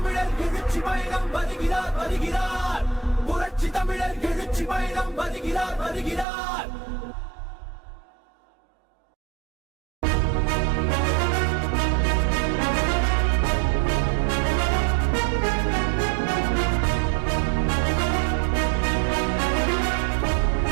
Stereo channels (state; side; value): drops out; left; at 6.2 s